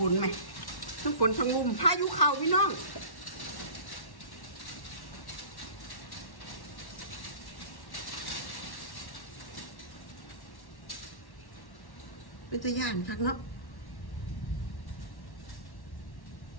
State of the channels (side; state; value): right; late; 1.1 ms